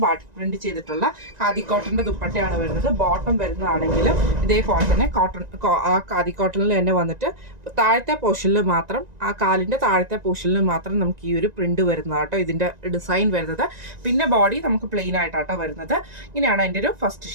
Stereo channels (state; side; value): late; left; 1.9 ms